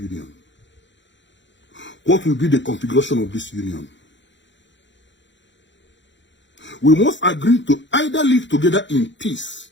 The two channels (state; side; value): late; right; 0.53 ms